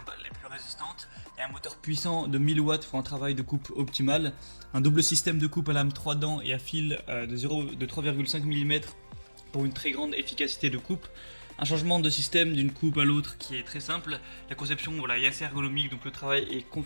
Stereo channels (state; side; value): inverted; both; correlation -1.00